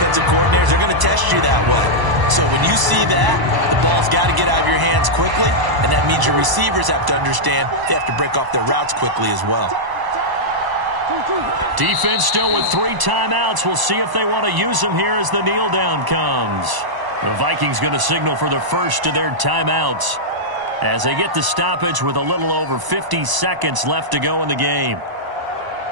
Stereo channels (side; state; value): left; late; 1.0 ms